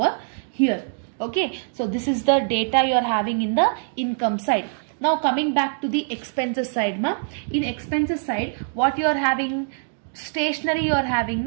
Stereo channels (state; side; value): silent; left; digital silence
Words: here. Okay, so this is the data you are having in the income side. Now coming back to the expenses side ma. In expenses side, what you are having? Stationery you are having,